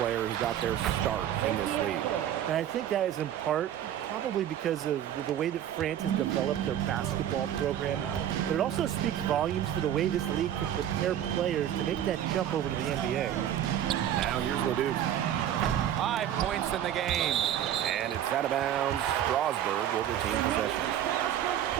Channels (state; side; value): quieter; left; 10.8 dB